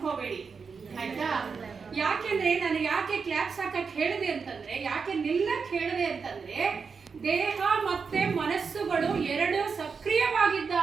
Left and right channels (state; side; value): quieter; left; 5.4 dB